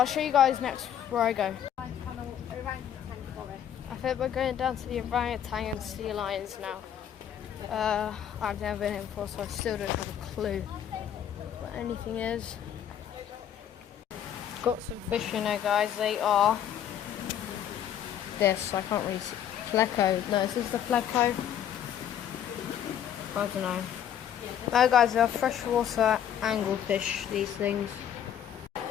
show you guys next where I go. I think we're going down to the orangutan and sea lions now. I've never been here before, so I still don't have a clue what anything is. Got some fish in there, guys. They are this. I can't really see. Pleco. No, is this the pleco? I don't know. No, guys, they're freshwater anglefish. These things. I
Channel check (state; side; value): quieter; right; 9.7 dB